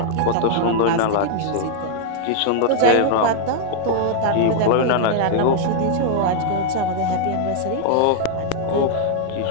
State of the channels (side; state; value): both; different; correlation 0.00